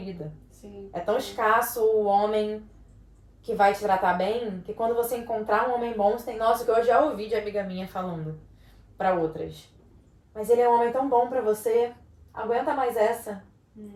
Sim. É tão escasso o homem que vai te tratar bem, que quando você encontrar um homem bom, você tem... Nossa, que eu já ouvi de amiga minha falando para outras. Mas ele é um homem tão bom para você, aguenta mais essa.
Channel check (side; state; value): both; identical; correlation 1.00